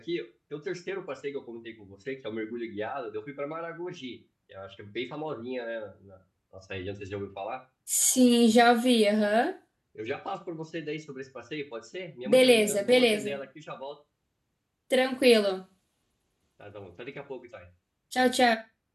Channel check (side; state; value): both; identical; correlation 1.00